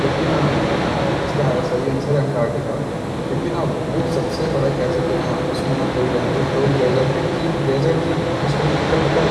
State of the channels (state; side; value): identical; both; correlation 1.00